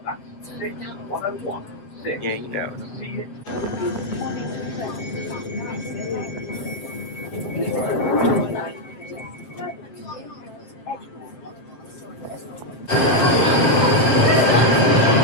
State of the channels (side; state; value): right; late; 7.3 ms